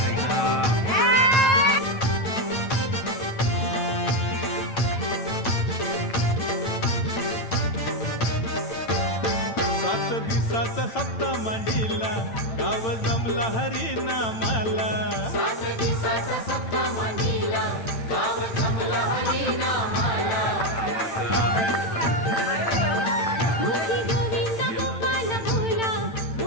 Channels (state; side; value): late; right; 8.9 ms